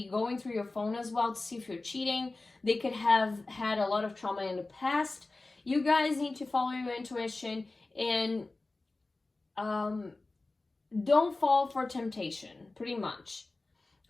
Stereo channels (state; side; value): quieter; right; 3.2 dB